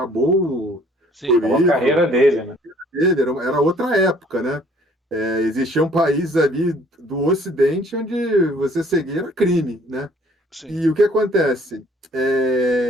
Sim. É uma carreira dele, né? Era outra época, né? Existiam países ali do Ocidente onde você seguir era crime, né? Sim. E o que acontece?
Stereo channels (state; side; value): normal; both; correlation 0.58